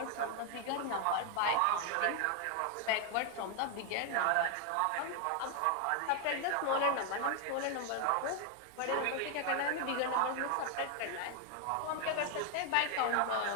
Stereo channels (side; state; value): both; different; correlation 0.00